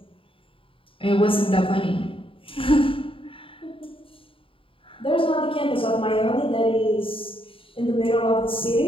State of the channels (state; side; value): late; right; 0.26 ms